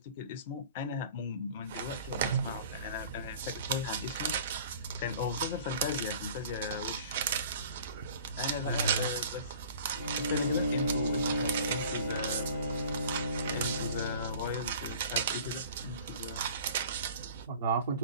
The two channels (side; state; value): both; inverted; correlation -0.46